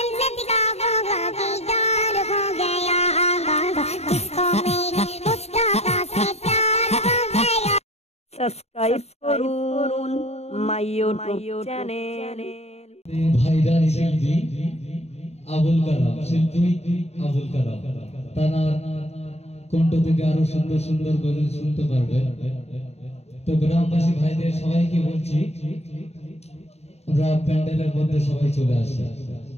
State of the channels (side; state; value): right; late; 0.31 ms